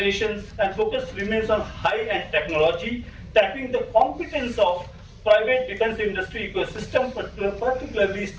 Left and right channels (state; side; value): identical; both; correlation 1.00